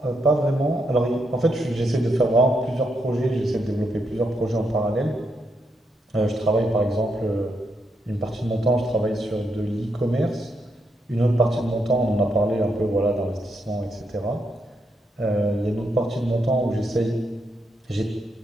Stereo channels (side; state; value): both; normal; correlation 0.80